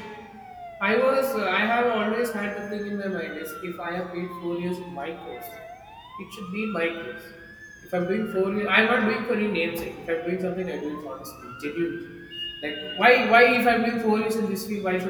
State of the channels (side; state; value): both; identical; correlation 1.00